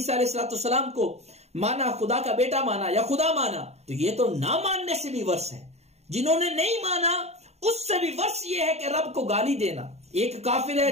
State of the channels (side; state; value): left; late; 0.31 ms